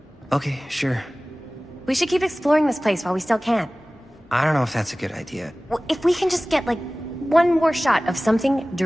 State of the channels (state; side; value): normal; both; correlation 0.98